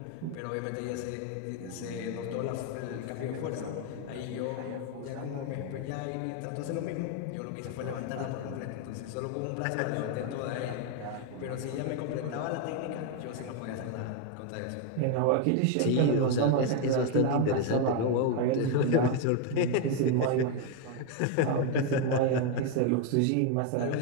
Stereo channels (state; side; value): different; both; correlation 0.01